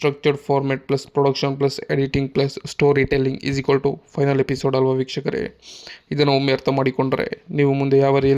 format plus production plus editing plus storytelling = final episode ಅಲ್ವಾ ವೀಕ್ಷಕರೇ. ಇದನ್ನು ಒಮ್ಮೆ ಅರ್ಥ ಮಾಡಿಕೊಂಡ್ರೆ ನೀವು ಮುಂದೆ ಯಾವ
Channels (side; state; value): both; identical; correlation 1.00